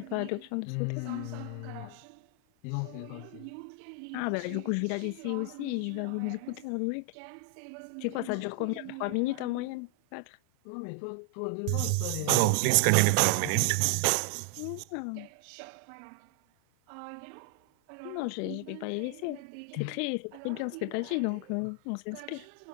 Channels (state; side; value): different; both; correlation 0.00